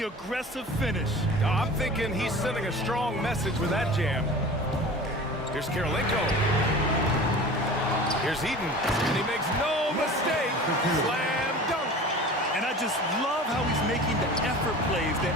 aggressive finish. I'm thinking he's sending a strong message with that jam. Here's Kirilenko. Here's Eaton, and he makes no mistake. Slam dunk. And I just love how he's making the effort plays that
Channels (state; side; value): normal; both; correlation 0.39